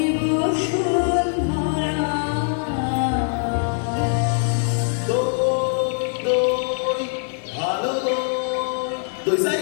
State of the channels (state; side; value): silent; right; digital silence